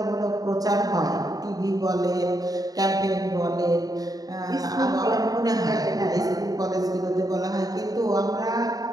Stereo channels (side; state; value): left; late; 0.18 ms